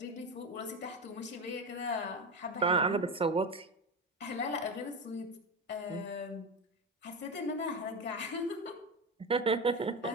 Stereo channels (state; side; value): normal; both; correlation 0.19